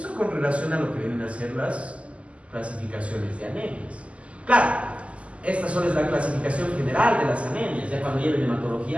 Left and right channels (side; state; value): left; late; 0.061 ms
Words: con relación a lo que vienen a ser las clasificaciones de anemias. Claro, esta solo es la clasificación general de las anemias. Ya cuando lleven